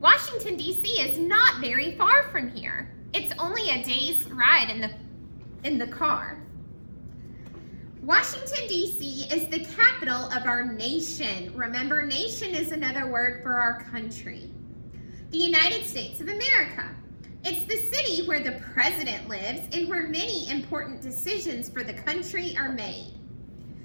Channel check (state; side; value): inverted; both; correlation -1.00